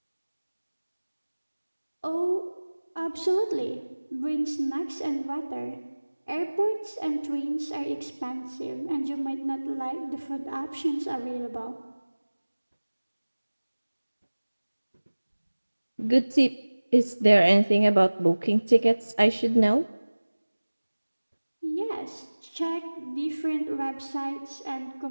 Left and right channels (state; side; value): inverted; both; correlation -1.00